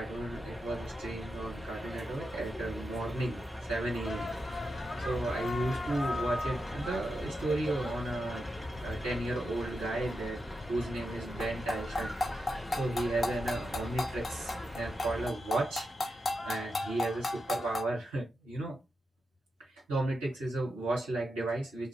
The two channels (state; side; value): normal; both; correlation 0.87